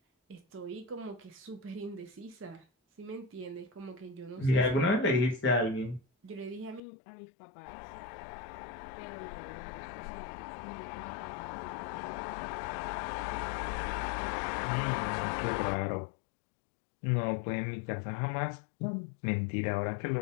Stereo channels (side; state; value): right; drops out; at 6.8 s